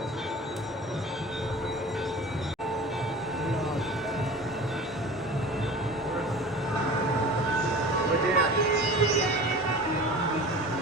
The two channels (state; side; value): normal; both; correlation 0.38